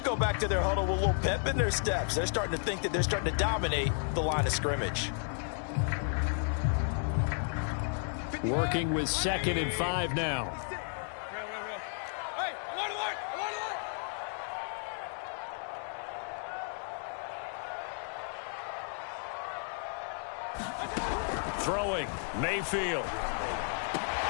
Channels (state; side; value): silent; right; 56 dB below the other